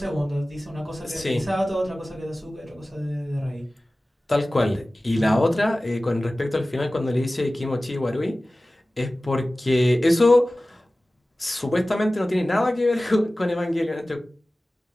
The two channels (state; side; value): normal; both; correlation 0.97